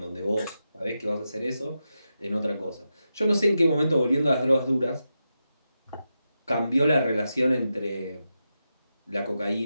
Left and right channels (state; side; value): inverted; both; correlation -0.89